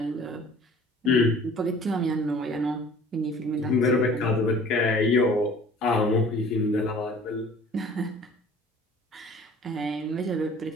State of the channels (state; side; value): normal; both; correlation 0.49